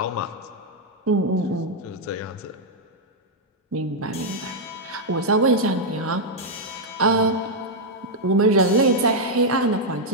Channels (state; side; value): normal; both; correlation -0.03